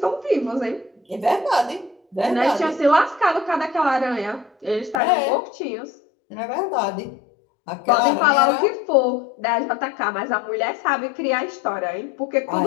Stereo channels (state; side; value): drops out; right; at 5.0 s